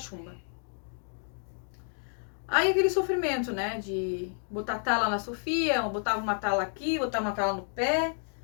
Aí aquele sofrimento, né, de botar tala na Sofia, botava uma tala aqui, botava uma tala no pé,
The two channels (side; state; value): right; silent; 58 dB below the other